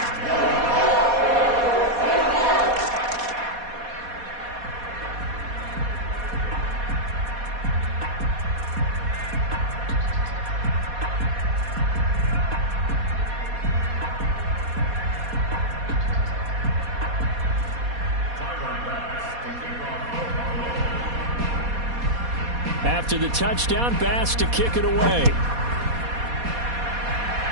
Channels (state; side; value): late; left; 4.2 ms